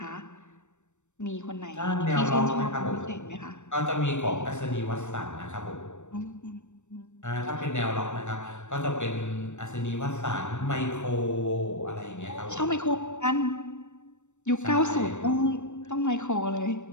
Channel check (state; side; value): late; right; 0.84 ms